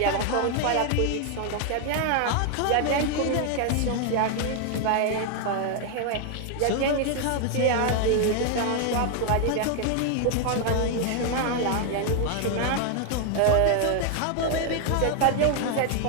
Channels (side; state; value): both; different; correlation 0.00